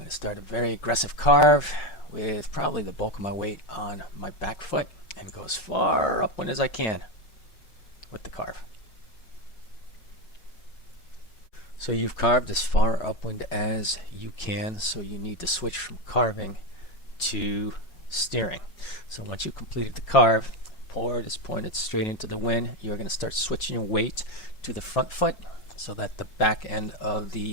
to start a very aggressive carve with probably the bulk of my weight on my back foot and go as far upwind as I can with the carve. So you've carved as far upwind as you can, so you need to switch from carving to steering. So once you've completed the carve, board is pointed straight into the wind, you're going to start switching your weight to the front foot so that the back end of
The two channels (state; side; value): late; right; 5.4 ms